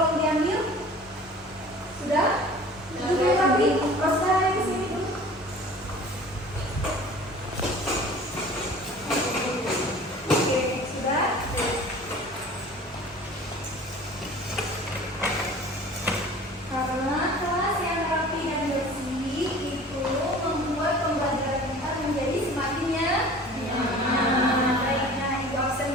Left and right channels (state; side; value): normal; both; correlation 0.44